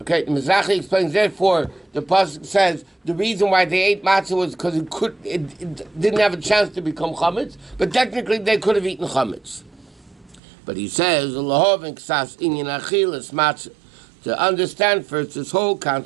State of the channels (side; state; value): left; drops out; at 10.4 s